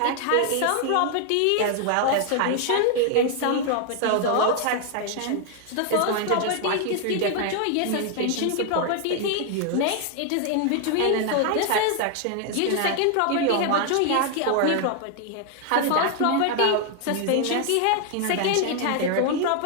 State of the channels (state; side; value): different; both; correlation 0.00